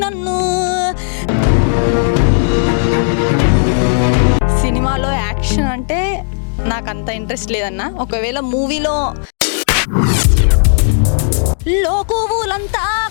నన్ను. సినిమాలో యాక్షన్ అంటే నాకు అంత ఇంట్రెస్ట్ లేదన్నా. ఒకవేళ మూవీలో లోకువులంతా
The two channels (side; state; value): right; silent; digital silence